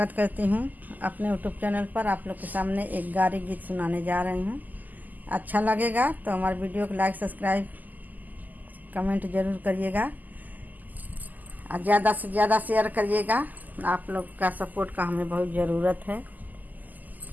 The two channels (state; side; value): late; left; 0.083 ms